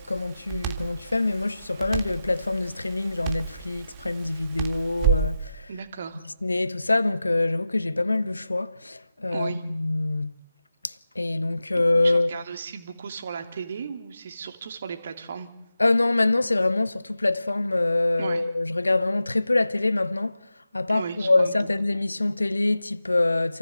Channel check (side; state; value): both; inverted; correlation -0.92